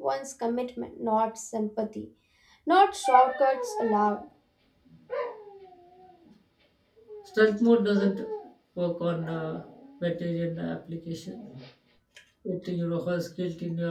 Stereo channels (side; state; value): both; identical; correlation 1.00